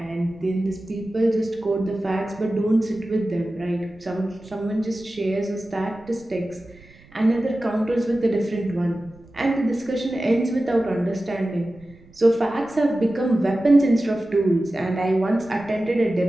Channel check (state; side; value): noise; right; rumble, 25 dB below the sound